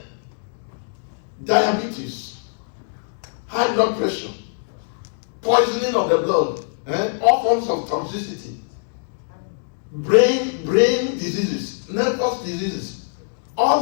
diabetes, high blood pressure, poisoning of the blood, all forms of toxicity, brain diseases, nervous diseases.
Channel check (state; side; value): silent; right; digital silence